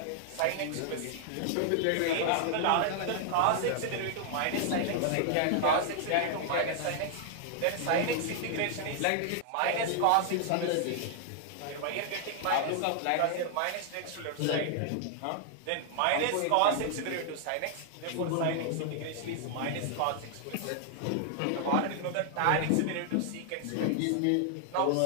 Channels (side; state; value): both; different; correlation 0.00